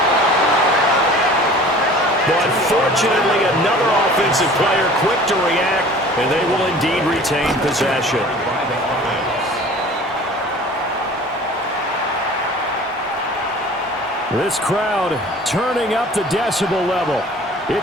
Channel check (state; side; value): normal; both; correlation 0.45